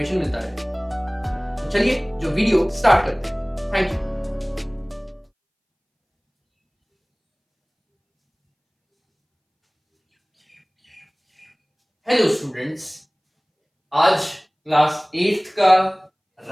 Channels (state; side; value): identical; both; correlation 1.00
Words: मिलता रहे। तो चलिए जो वीडियो स्टार्ट करते हैं। Thank you. हेलो स्टूडेंट्स, आज क्लास 8 का